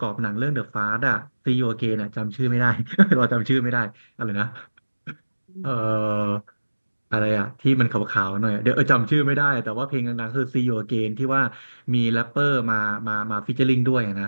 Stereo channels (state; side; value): inverted; both; correlation -1.00